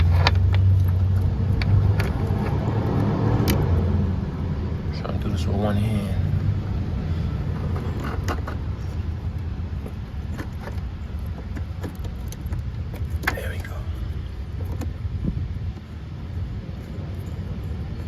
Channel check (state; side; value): identical; both; correlation 1.00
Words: trying to do this with one hand. There we go.